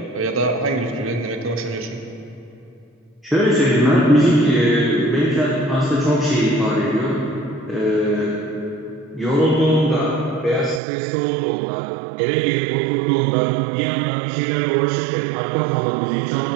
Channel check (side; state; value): left; drops out; at 10.8 s